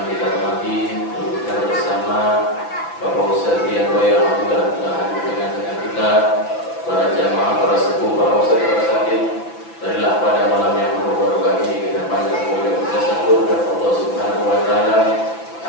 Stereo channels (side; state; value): right; late; 5.9 ms